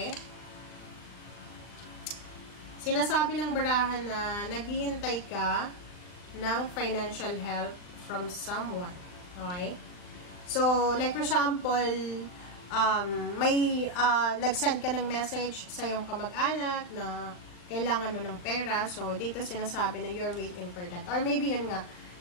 Sinasabi ng barahan na naghihintay ka ng financial help from someone. Okay? So, like for example, may nag-send ka ng message sa iyong kamag-anak na kailangan mo ng pera. So, dito sinasabi na you're waiting for that. Or maybe yun nga,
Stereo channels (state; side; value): late; right; 39 ms